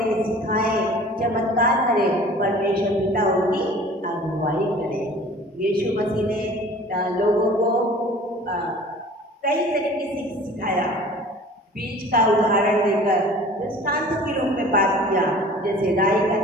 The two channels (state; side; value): normal; both; correlation 0.46